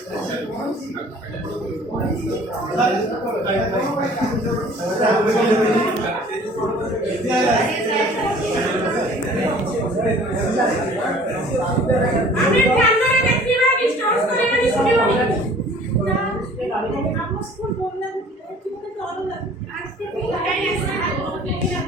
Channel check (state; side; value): normal; both; correlation 0.50